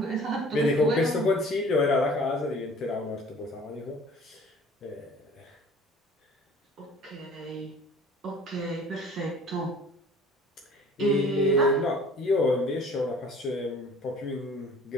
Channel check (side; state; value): both; normal; correlation 0.48